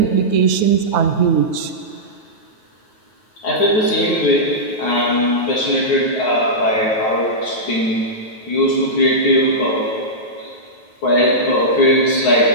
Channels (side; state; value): right; late; 9.4 ms